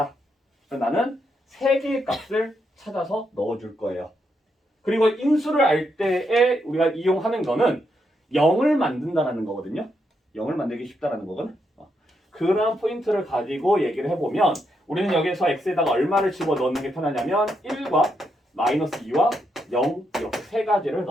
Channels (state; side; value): normal; both; correlation 0.80